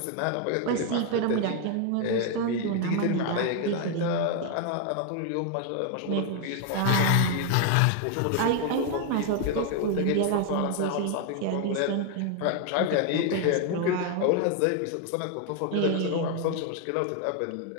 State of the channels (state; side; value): different; both; correlation 0.01